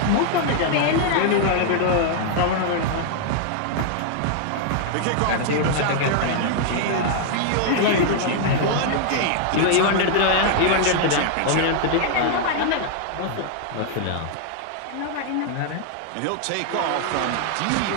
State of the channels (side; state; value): both; different; correlation 0.00